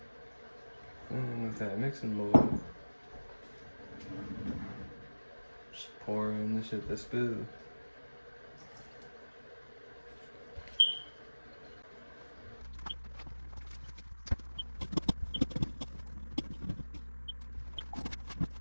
And with that mixing bowl, just pour in the shit that's good.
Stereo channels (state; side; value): inverted; both; correlation -1.00